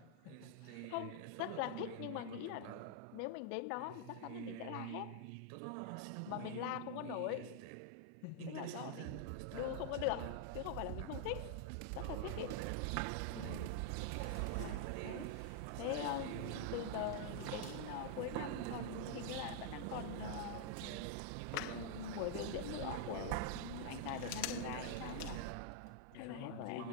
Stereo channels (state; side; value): different; both; correlation -0.01